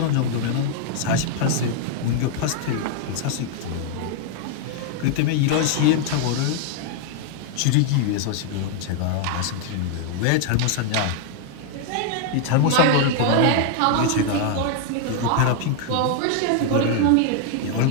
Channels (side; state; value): both; different; correlation 0.00